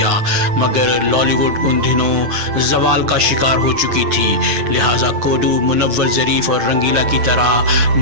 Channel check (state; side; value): late; left; 8.7 ms